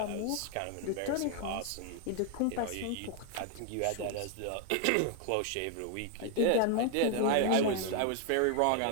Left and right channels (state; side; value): different; both; correlation 0.00